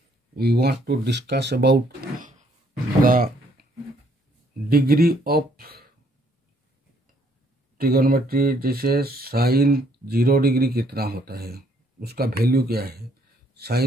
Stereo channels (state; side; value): normal; both; correlation 0.67